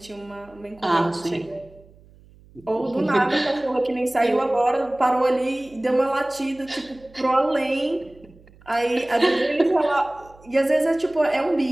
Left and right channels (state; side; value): noise; right; hum, 26 dB below the sound